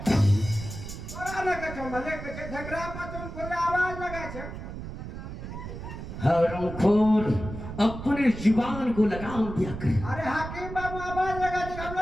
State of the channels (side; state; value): right; noise; rumble, 9 dB below the sound